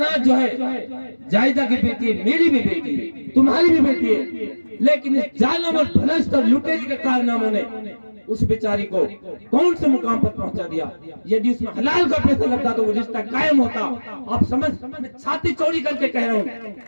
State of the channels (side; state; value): both; inverted; correlation -1.00